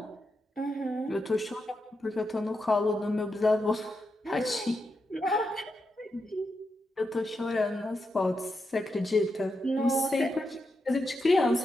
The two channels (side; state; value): both; normal; correlation 0.85